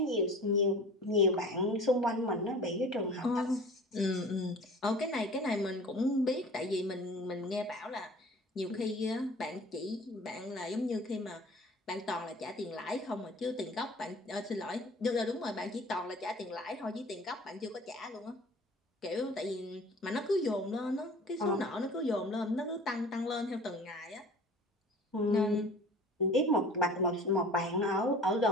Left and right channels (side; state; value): both; normal; correlation 0.43